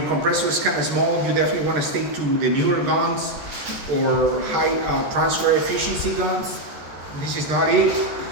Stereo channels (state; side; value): late; left; 13 ms